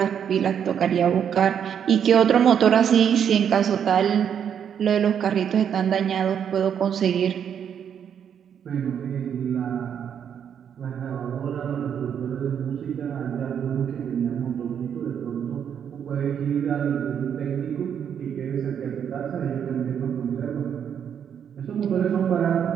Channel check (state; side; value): quieter; left; 8.3 dB